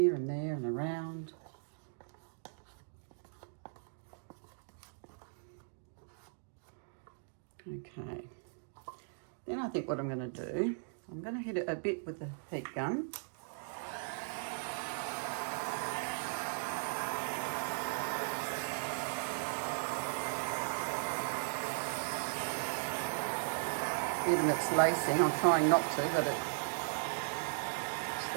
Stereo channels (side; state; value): left; silent; digital silence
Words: and there and around. Okay, then I think what I'm going to do, I'm going to hit it a bit with the heat gun. Even it's lacing, I'm trying not to, but it's